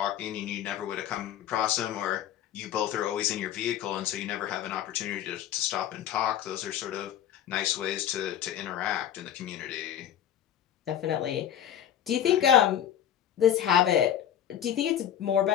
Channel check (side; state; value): right; quieter; 10.3 dB